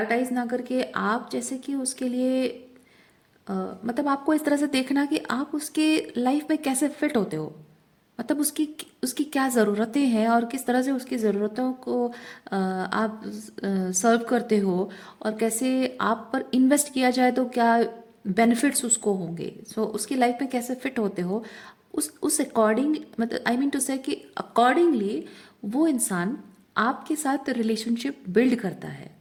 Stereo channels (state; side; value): identical; both; correlation 1.00